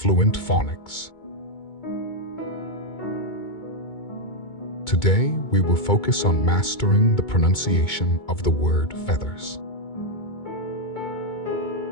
Phonics. Today, we will focus on mastering the pronunciation of the word feathers.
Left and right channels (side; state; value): right; late; 2.2 ms